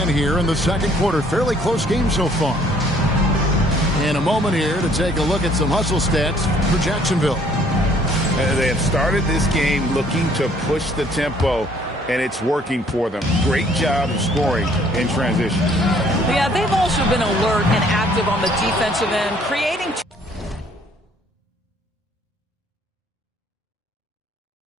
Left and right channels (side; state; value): both; normal; correlation 0.61